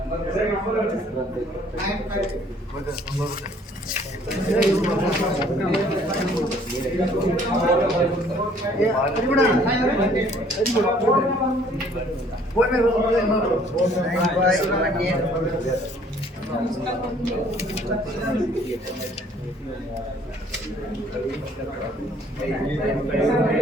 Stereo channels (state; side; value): normal; both; correlation 0.59